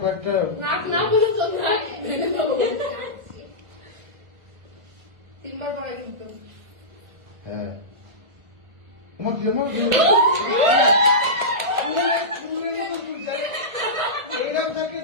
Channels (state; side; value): late; left; 1.4 ms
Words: কয়েকটা তিনবার পড়া কিন্তু। হ্যাঁ তোমার যেমন এরকম থাকে